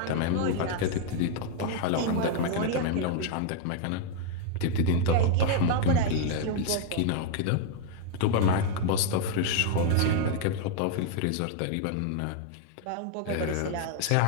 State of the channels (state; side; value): different; both; correlation 0.00